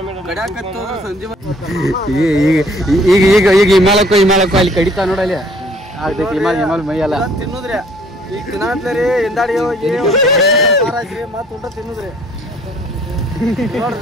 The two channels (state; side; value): normal; both; correlation 0.58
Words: ಈಗ ಹಿಮಾಲಕ್ಕೂ ಅಲ್ಲಿ ಕಡಿತಾ ನೋಡಲ್ಲಿ ಆಗ್ತೈತಿ. ಹಿಮಾಲ ಮೈಯಲ್ಲ ತಿನ್ನುದ್ರಿ. ಈಗ ತಿನ್ನತ್ಲರಿ ಹಿಂದಾಡಿ ಹೋಗಿ ಮತ್ ಊಟ ತಿನ್ನುದ್ರಿ. ನೋಡ್ರಿ